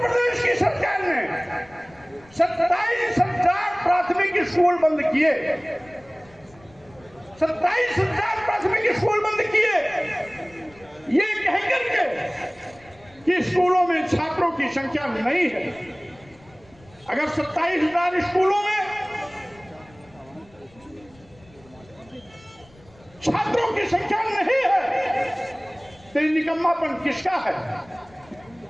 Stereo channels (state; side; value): noise; left; rumble, 27 dB below the sound